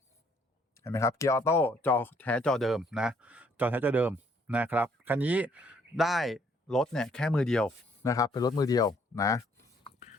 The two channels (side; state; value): both; normal; correlation 0.65